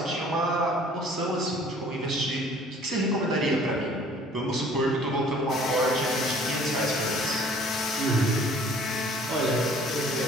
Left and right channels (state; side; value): normal; both; correlation 0.53